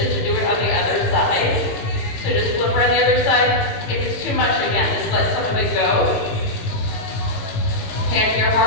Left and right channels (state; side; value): late; right; 18 ms